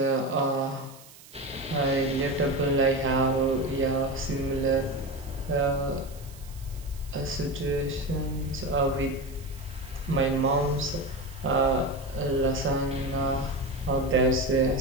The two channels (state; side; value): noise; right; hiss, 21 dB below the sound